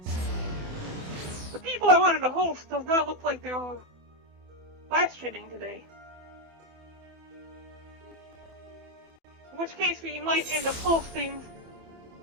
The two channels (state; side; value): late; left; 27 ms